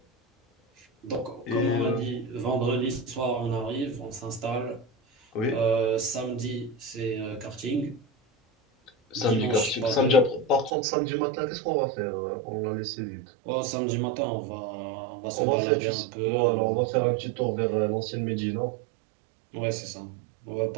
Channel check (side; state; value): left; drops out; at 10.7 s